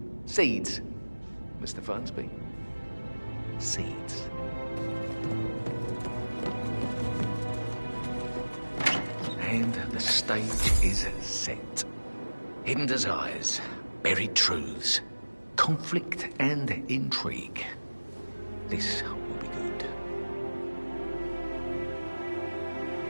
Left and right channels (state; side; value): inverted; both; correlation -1.00